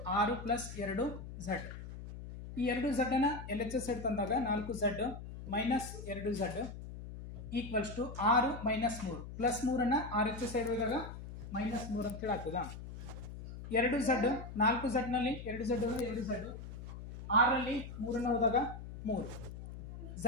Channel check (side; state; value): left; noise; hum, 11 dB below the sound